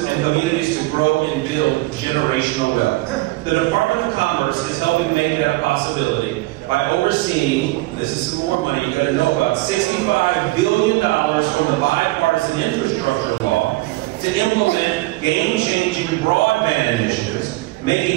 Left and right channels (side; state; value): left; quieter; 20.3 dB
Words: and communities to grow and build generational wealth. The Department of Commerce is helping make that a possibility by overseeing, this is some more money you got to know about, $65 billion from the bipartisan infrastructure law to implement game-changing broadband initiatives,